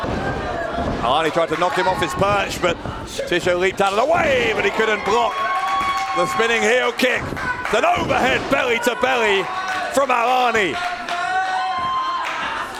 Alani tried to knock him off his perch, but Tischer leaped out of the way, but he couldn't block the spinning heel kick. It's an overhead belly to belly from Alani.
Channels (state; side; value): identical; both; correlation 1.00